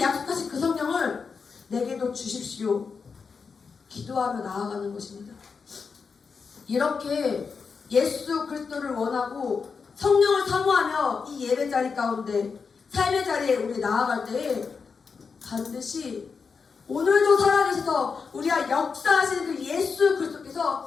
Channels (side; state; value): right; quieter; 5.4 dB